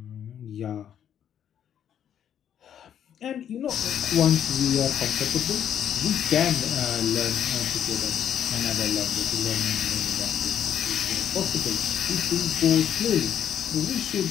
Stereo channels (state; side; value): quieter; right; 9.5 dB